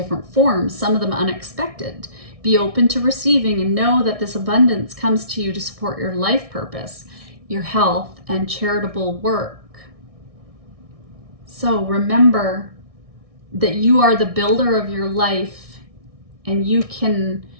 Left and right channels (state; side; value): late; left; 1.6 ms